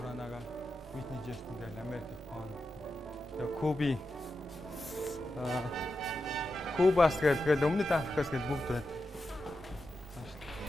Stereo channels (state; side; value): normal; both; correlation 0.89